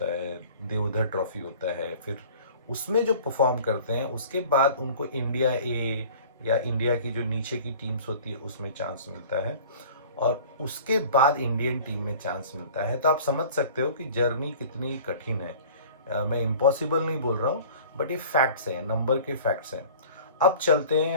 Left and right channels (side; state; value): both; inverted; correlation -0.44